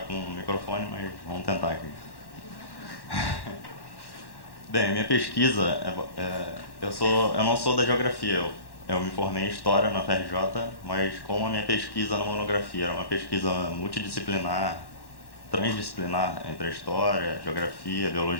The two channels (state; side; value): late; right; 1.1 ms